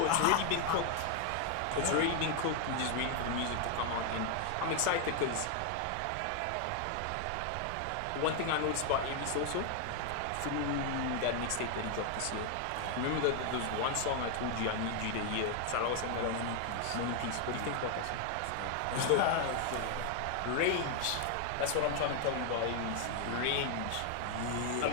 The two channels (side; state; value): both; different; correlation 0.00